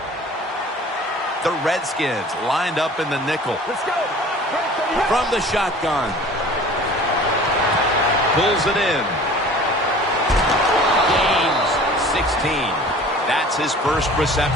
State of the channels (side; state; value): both; normal; correlation 0.45